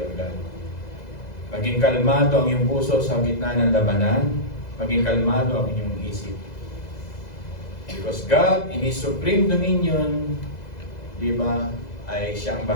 God. Maging kalmado ang iyong puso sa gitna ng labanan. Maging kalmado ang inyong isip. Because God, in His supreme dominion, di ba, ay siyang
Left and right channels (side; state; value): right; late; 2.0 ms